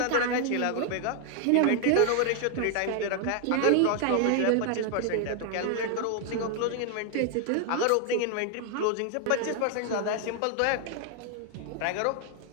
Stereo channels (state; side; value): different; both; correlation 0.00